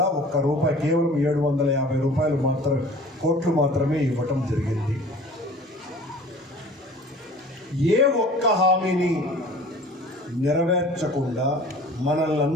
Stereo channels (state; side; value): normal; both; correlation 0.45